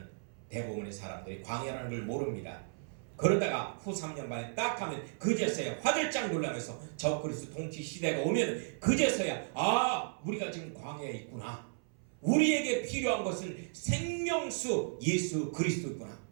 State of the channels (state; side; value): silent; left; 55 dB below the other